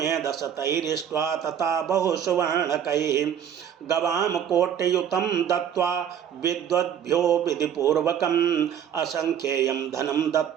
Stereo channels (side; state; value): left; quieter; 8.9 dB